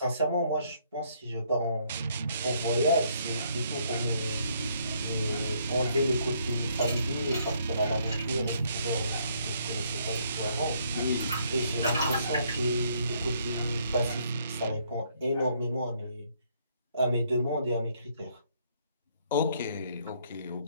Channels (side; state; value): both; inverted; correlation -0.69